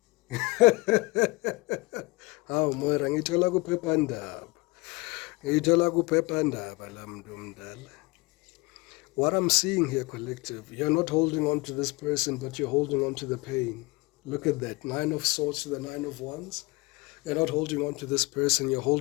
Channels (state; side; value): quieter; right; 24.7 dB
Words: Hawu Moira, ngithola kuphephandaba la muntu omdala. What I'm seeing here, collective, you're not holding on to this person, but you're holding on to the pain. Look at that, 9 of Swords to the 9 of Wands. You're not holding on to this person, you're